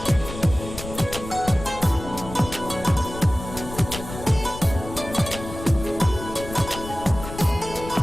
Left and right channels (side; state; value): left; noise; rumble, 11 dB below the sound